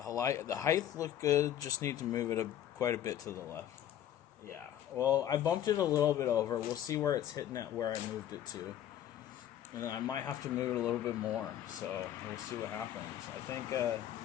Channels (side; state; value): right; quieter; 11.2 dB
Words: height looked good, just need to move it quite a bit to the left. Yeah, well, I bumped it a little bit over. We'll see where it's hitting at where I moved it to. And then I might have to move it a little bit more, so we'll see what happens. I think